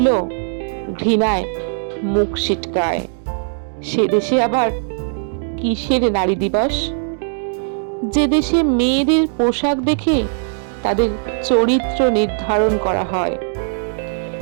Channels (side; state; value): left; silent; digital silence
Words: ঘৃণায় মুখ সিটকায়, সে দেশে আবার কিসের নারী দিবস? যে দেশে মেয়েদের পোশাক দেখে তাদের চরিত্র নির্ধারণ করা হয়,